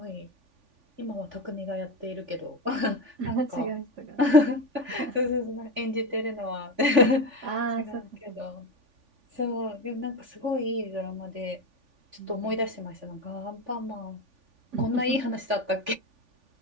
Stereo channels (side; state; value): left; late; 3.5 ms